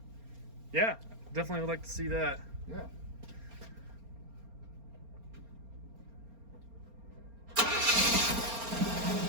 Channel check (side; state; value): left; late; 4.3 ms